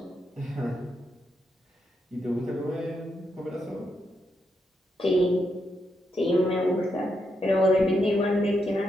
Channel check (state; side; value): normal; both; correlation 0.82